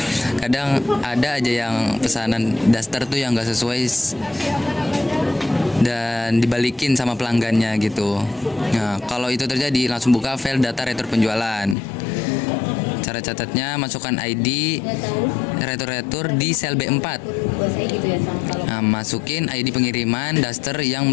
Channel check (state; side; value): drops out; right; at 11.8 s